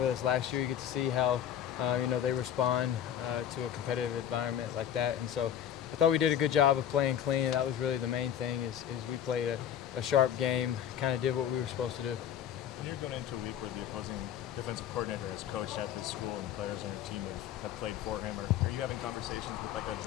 us last year. You get to see how they respond to a competitive environment like that. And so I thought we did a good job of playing clean. That was really the main thing is we played a sharp game, kind of did what we were supposed to do. When you're going into a week where the opposing defensive coordinator has coached at this school and players on your team have played for him, are you having conversations with like a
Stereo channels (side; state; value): right; quieter; 9.9 dB